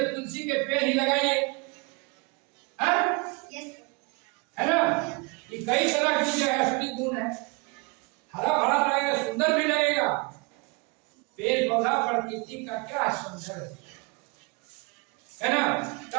तुलसी के पेड़ ही लगाइए, है ना। ये कई तरह की जो है असली गुण है, हरा भरा लगेगा, सुंदर भी लगेगा। पेड़ पौधा प्रकृति का क्या सौंदर्य है ना।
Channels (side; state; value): left; quieter; 30.1 dB